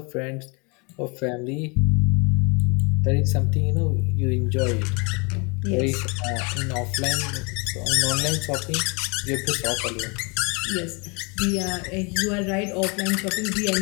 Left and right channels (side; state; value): right; quieter; 31.1 dB